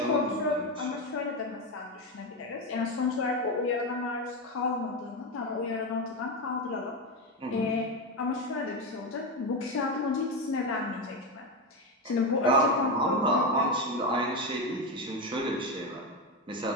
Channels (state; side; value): normal; both; correlation 0.14